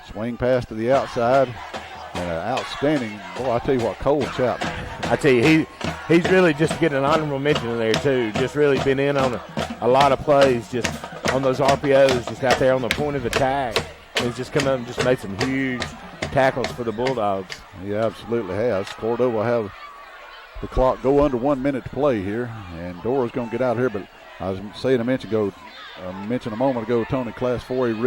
Swing pass to the outside. And an outstanding, boy, I tell you what, Cole Chapman. I tell you, he's really just getting an honorable mention in there, too. Just really been in on a lot of plays, just on those RPOs, just out there on the point of attack. He's just come up and just made some huge tackles for the Bulldogs. He absolutely has. Cordova will have the clock go under 1 minute to play here. And Dora's going to get out here, but I was saying a moment ago, Tony, Class 4A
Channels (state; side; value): identical; both; correlation 1.00